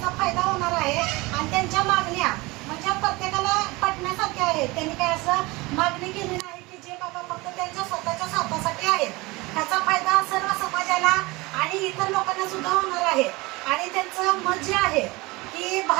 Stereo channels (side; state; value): left; quieter; 23.2 dB